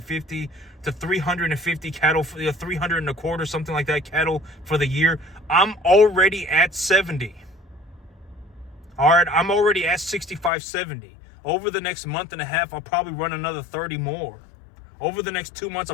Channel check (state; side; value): drops out; right; at 10.5 s